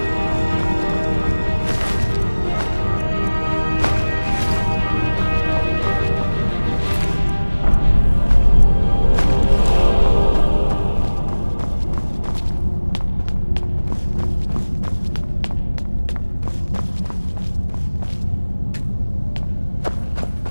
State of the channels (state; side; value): inverted; both; correlation -1.00